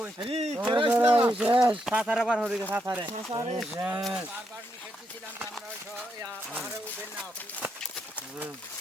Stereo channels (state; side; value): normal; both; correlation 0.80